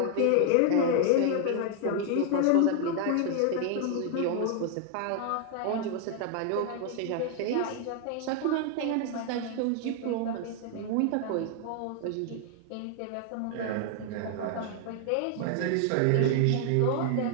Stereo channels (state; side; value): different; both; correlation 0.00